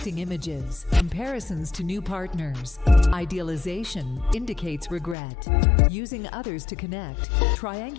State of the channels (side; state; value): right; drops out; at 5.2 s